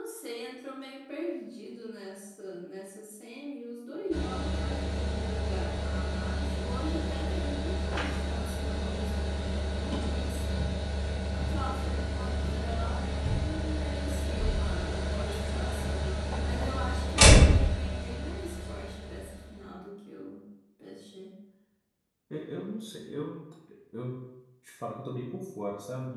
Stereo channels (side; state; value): both; identical; correlation 1.00